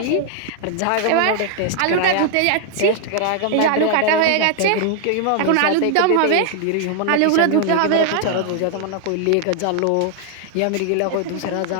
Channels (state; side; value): different; both; correlation 0.00